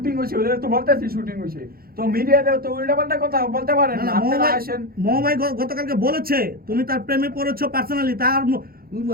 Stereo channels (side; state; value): left; late; 0.44 ms